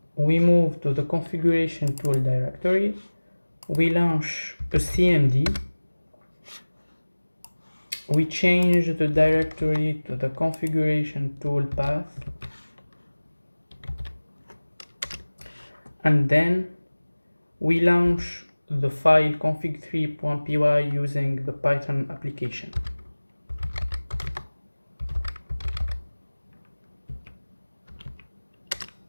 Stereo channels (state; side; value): inverted; both; correlation -1.00